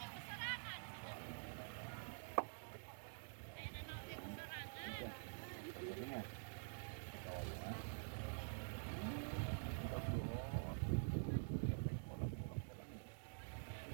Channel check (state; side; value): silent; left; digital silence